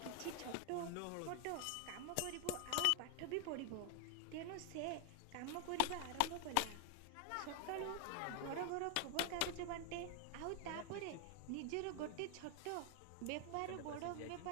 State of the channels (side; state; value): both; different; correlation 0.00